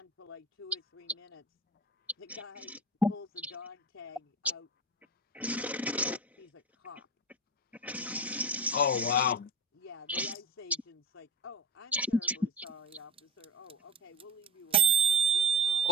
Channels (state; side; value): normal; both; correlation 0.25